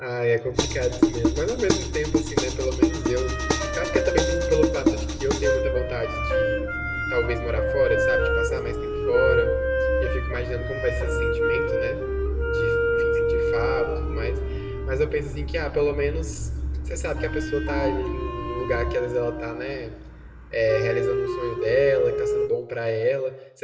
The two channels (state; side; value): identical; both; correlation 1.00